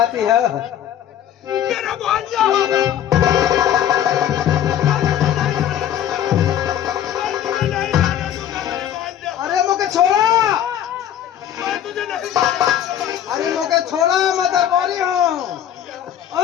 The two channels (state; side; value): quieter; right; 10.5 dB